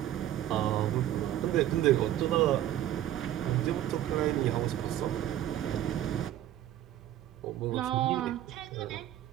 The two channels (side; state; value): left; quieter; 12.4 dB